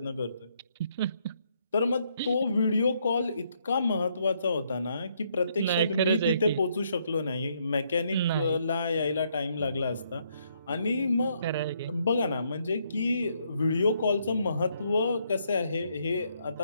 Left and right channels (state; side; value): inverted; both; correlation -0.73